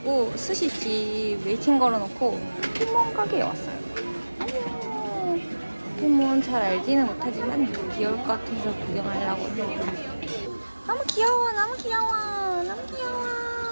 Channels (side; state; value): both; inverted; correlation -1.00